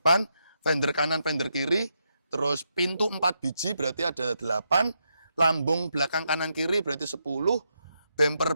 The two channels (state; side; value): inverted; both; correlation -0.82